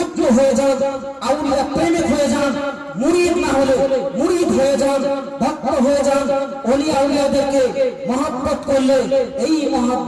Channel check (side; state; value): both; identical; correlation 1.00